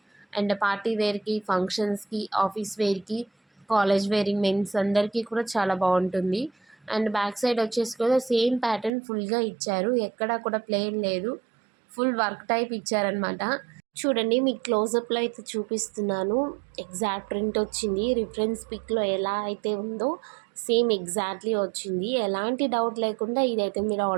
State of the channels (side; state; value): left; drops out; at 8.9 s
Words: అండ్ పార్టీ వేర్‌కి, ఫంక్షన్స్‌కి, ఆఫీస్ వేర్‌కి, కాలేజ్ వేరింగ్ మెన్స్ అందరికీ కూడా చాలా బాగుంటుంది. అండ్ బ్యాక్ సైడ్ వచ్చేసి కూడా సేమ్ ప్యాటర్న్ ఫుల్‌గా ఇచ్చారు. ఎక్కడా కూడా ప్లెయిన్ లేదు. ఫుల్ వర్క్ టైప్ ఇచ్చారనమాట. చూడండి మీకు క్లోజప్‌లో అయితే చూపిస్తున్నాను. ఎగ్జాక్ట్ ప్రింట్ వచ్చింది. రిఫరెన్స్ పిక్‌లో ఎలా అయితే ఉందో సేమ్ ఎగ్జాక్ట్‌లీ వచ్చింది. ఎలాంటి డౌట్ లేకుండా ఇదైతే మీరు